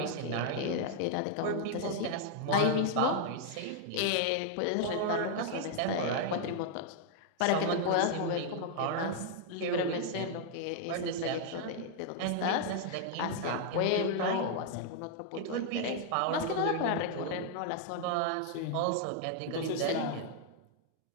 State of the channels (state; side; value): different; both; correlation 0.00